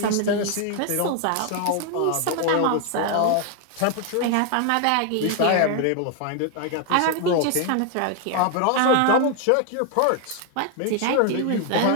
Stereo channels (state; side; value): different; both; correlation 0.00